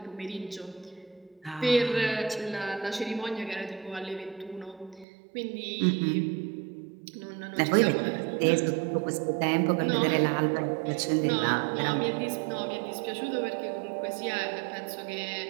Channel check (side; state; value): left; drops out; at 5.1 s